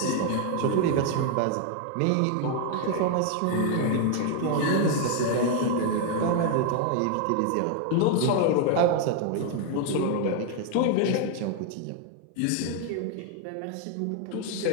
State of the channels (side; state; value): both; different; correlation 0.00